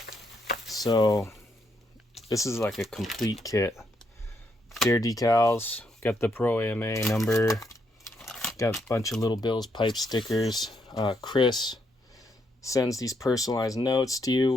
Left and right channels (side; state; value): both; normal; correlation 0.76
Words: So this is like a complete kit. Dare decals, got the Pro AMA number, got a bunch of little Bill's pipe stickers. Chris sends these personalized notes to you,